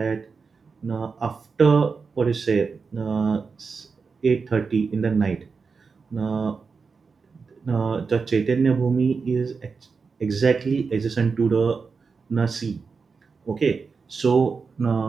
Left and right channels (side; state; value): left; quieter; 5.0 dB